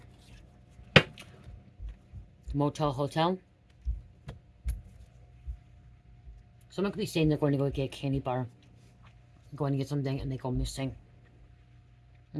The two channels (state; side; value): identical; both; correlation 1.00